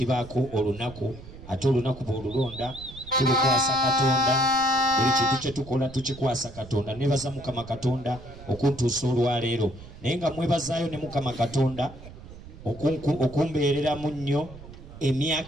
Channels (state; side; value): noise; right; rumble, 16 dB below the sound